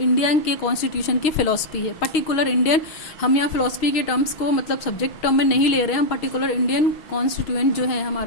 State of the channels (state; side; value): late; right; 6.3 ms